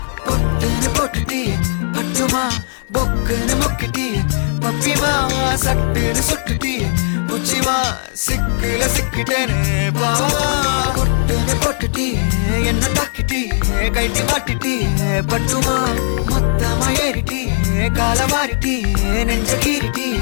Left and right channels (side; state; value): right; silent; digital silence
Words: பொட்டுன்னு போட்டுட்டி பட்டுமா பொக்குன்னு மொக்கிட்டி பப்பிமா சட்டுன்னு சுட்டுட்டி புச்சிமா சிக்குல சிக்கிட்டேன்னு பாவா. பொட்டுன்னு போட்டுட்டி என்ன தாக்கிட்டி கைட்டி மாட்டிட்டி பட்டுமா மொத்தமா ஏறிட்டி கால மாறிட்டி நெஞ்ச கீறிட்டி